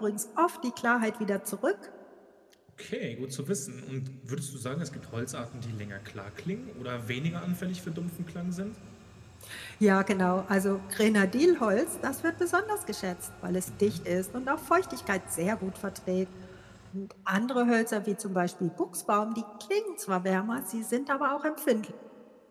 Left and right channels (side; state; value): both; identical; correlation 1.00